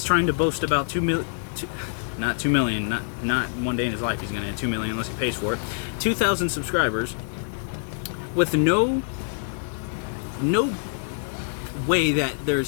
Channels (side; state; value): right; silent; digital silence